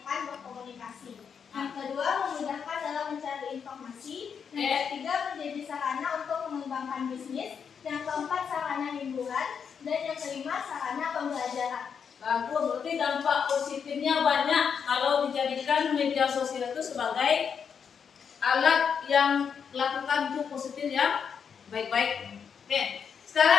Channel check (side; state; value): right; quieter; 6.9 dB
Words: berkomunikasi. Yang kedua, memudahkan dalam mencari informasi. Yang ketiga, menjadi sarana untuk mengembangkan bisnis. Yang keempat, sarana hiburan. Dan yang kelima, sarana pembelajaran. Bagus, berarti dampak positifnya banyak kalau dijadikan media sosial itu sebagai alat yang melakukan itu positif yang baik-baik. Oke,